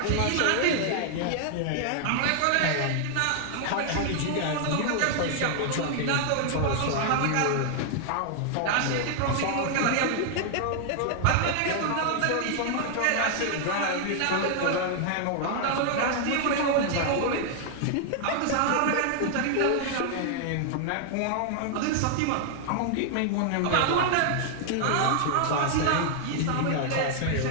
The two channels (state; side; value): different; both; correlation 0.00